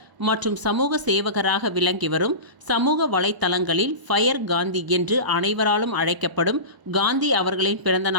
மற்றும் சமூக சேவகராக விளங்கி வரும் சமூக வலைத்தளங்களில் ஃபயர் காந்தி என்று அனைவராலும் அழைக்கப்படும் காந்தி அவர்களின் பிறந்த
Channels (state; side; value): late; left; 1.0 ms